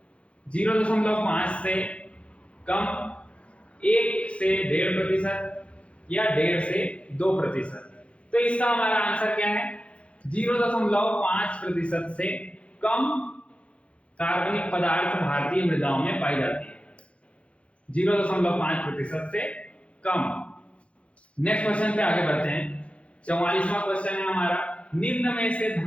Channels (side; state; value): right; late; 0.061 ms